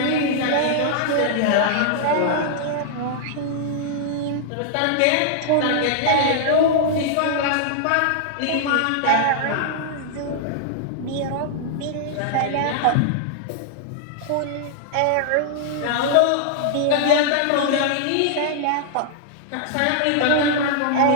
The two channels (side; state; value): both; different; correlation -0.01